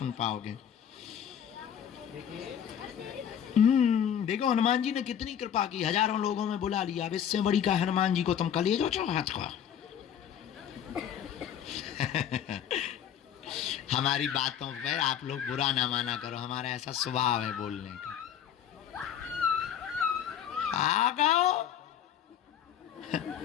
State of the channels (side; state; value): right; quieter; 9.3 dB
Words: पाओगे। देखो हनुमान जी ने कितनी कृपा की, हजारों लोगों में बुला लिया। अब इससे बड़ी का हनुमान जी को तुम कलेजो चो हाथ को। हमारी बातों पे आप लोग बुरा ना माना करो, हमारा ऐसा स्वभाव है बोलने का। आ गाओ